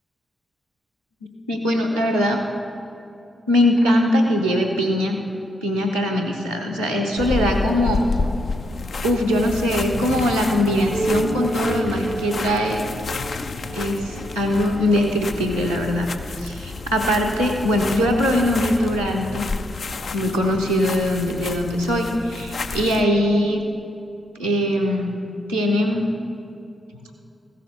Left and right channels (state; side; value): normal; both; correlation 0.74